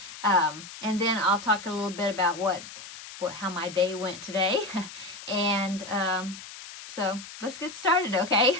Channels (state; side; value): noise; left; hiss, 14 dB below the sound